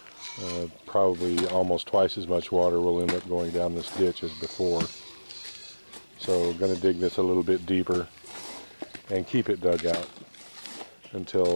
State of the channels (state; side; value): inverted; both; correlation -1.00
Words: Probably almost twice as much water will end up going down this ditch as before. So I'm going to dig this a little bit deeper and keep it dug out